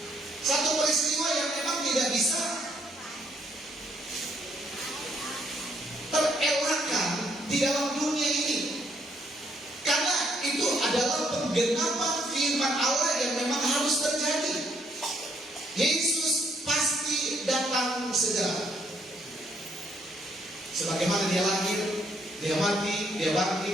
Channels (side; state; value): both; normal; correlation 0.70